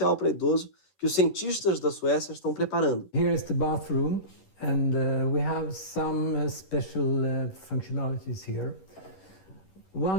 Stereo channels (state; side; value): late; right; 11 ms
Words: para idoso que os cientistas da Suécia estão preparando. Here is the bathroom, and we have some special functionalities here.